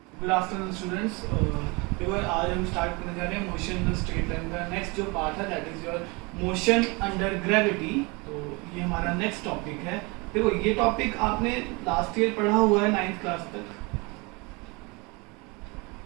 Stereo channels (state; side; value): quieter; left; 27.6 dB